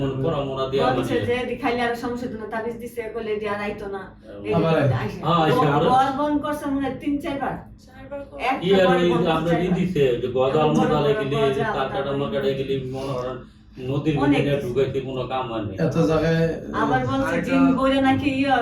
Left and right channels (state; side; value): identical; both; correlation 1.00